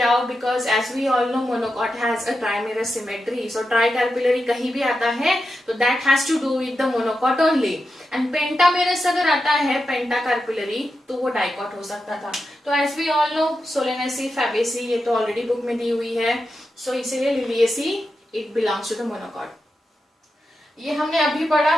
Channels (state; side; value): normal; both; correlation 0.89